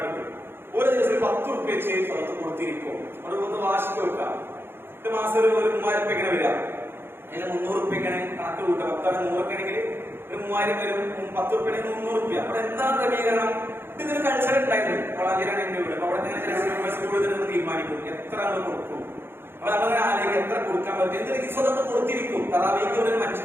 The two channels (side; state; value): left; late; 0.11 ms